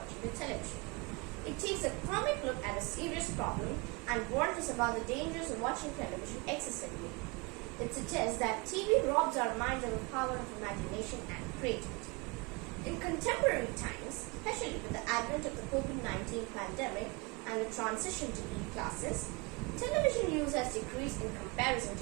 the television. It takes a comic look at a serious problem and warns us about the dangers of watching television excessively. It suggests that TV robs our minds of the power of imagination and creativity. In contemporary times, especially with the advent of the COVID-19 pandemic and the transition to e-classes, television use has decreased in comparison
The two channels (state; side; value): quieter; left; 28.2 dB